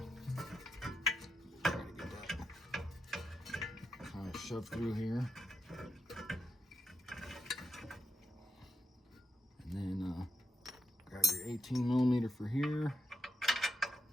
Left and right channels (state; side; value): normal; both; correlation 0.84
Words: to get that shove through here. And then grab your 18mm for here.